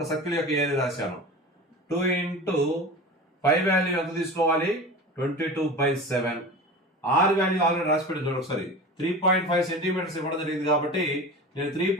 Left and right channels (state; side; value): normal; both; correlation 0.32